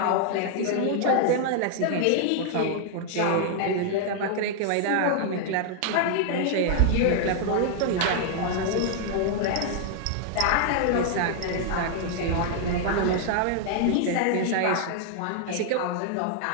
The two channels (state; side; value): different; both; correlation 0.00